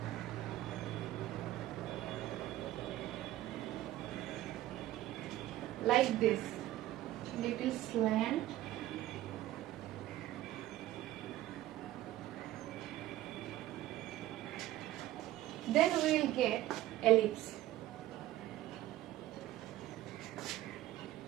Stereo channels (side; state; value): left; quieter; 14.7 dB